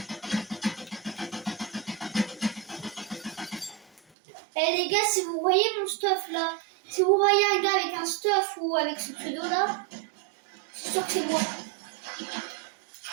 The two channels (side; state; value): left; drops out; at 4.0 s